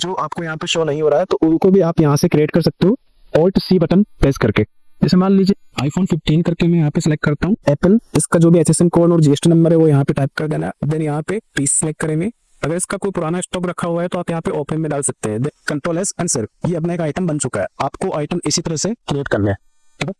आपको यहाँ पे शो नहीं हो रहा है, तो उनको भी आप यहाँ से क्रिएट कर सकते हो Alt C बटन प्रेस करके। जैसे मान लीजिए iPhone 15 करके मैं यहाँ पे सिलेक्ट करता हूँ एप्पल, इसका जो भी HSN कोड और GST नंबर है वो यहाँ पे टाइप कर देना। देन यहाँ पे पीस सिलेक्ट करेंगे। अगर इसका कोई पुराना स्टॉक रखा हुआ है तो आप यहाँ पे ओपन में डाल सकते हैं। Ctrl+S आंसर, ये अपना एक आइटम बन चुका है। आपको आइटम इसी तरह से क्रिएट करना है। ठीक है,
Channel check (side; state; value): both; identical; correlation 1.00